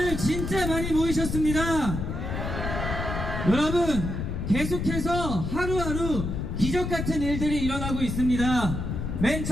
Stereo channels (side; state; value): left; noise; rumble, 4 dB below the sound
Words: 진짜 많이 모이셨습니다. 여러분, 계속해서 하루하루 기적같은 일들이 일어나고 있습니다. 맨